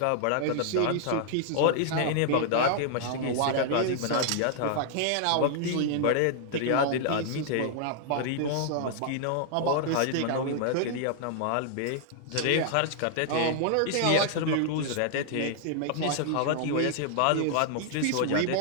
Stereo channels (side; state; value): both; different; correlation -0.01